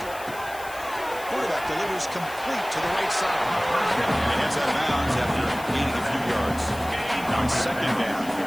Quarterback delivers complete to the right side. And gets out of bounds after gaining a few yards. On second down.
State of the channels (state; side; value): noise; left; hiss, 17 dB below the sound